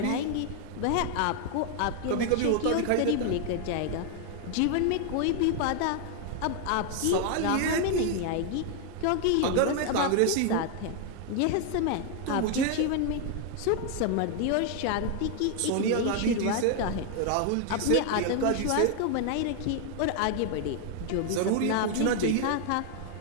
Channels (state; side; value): different; both; correlation 0.00